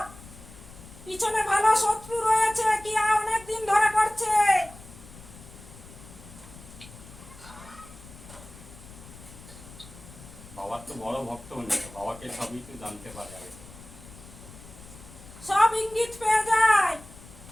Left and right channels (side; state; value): left; noise; rumble, 18 dB below the sound